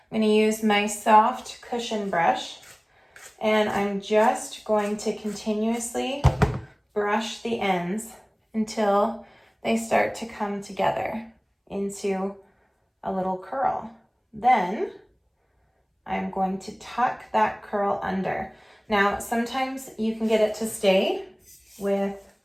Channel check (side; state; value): both; identical; correlation 1.00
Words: I'm gonna use my soft cushion brush, and I'm just going to continuously brush the ends until they start to come together into a little curl. Then I'm going to tuck that curl under. Now, sometimes you can get it to stay with